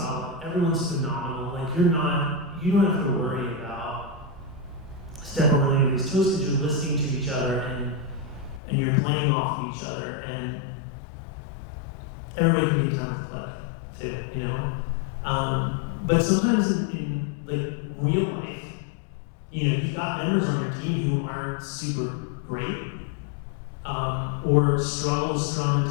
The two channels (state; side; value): drops out; right; at 8.6 s